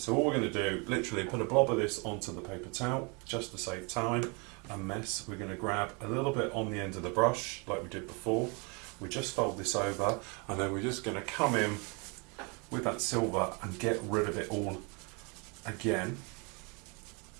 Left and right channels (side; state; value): left; quieter; 31.7 dB